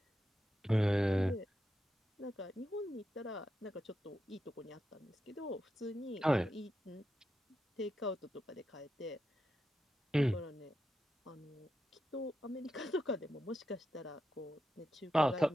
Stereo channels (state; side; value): normal; both; correlation 0.87